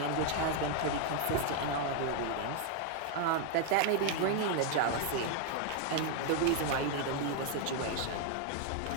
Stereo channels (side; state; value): both; different; correlation 0.00